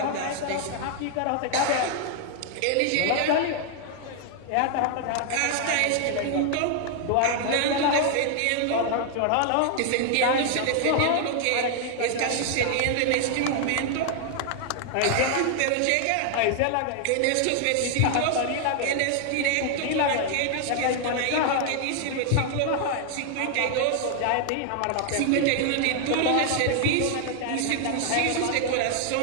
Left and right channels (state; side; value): different; both; correlation 0.00